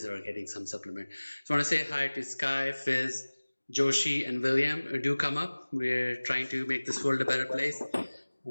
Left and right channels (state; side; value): inverted; both; correlation -1.00